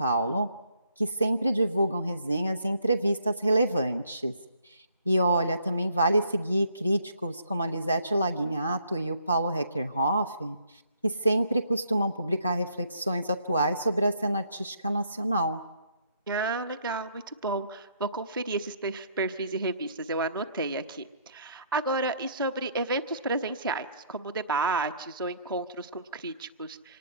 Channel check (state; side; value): inverted; both; correlation -0.67